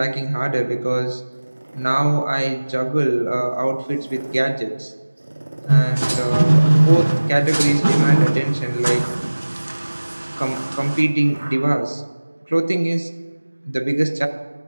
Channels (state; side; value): inverted; both; correlation -1.00